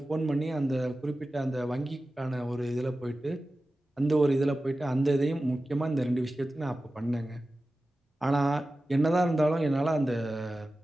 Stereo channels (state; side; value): normal; both; correlation 0.95